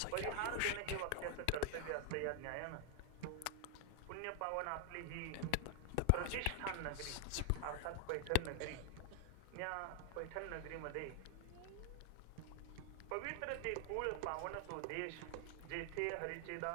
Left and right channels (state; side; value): different; both; correlation 0.00